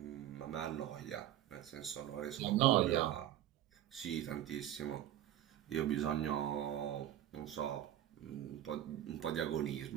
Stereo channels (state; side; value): quieter; left; 12.1 dB